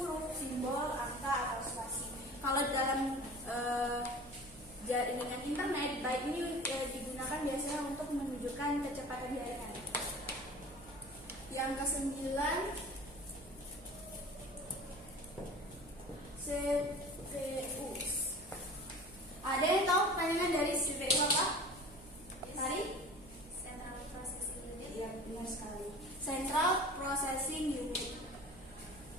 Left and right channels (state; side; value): noise; right; hum, 20 dB below the sound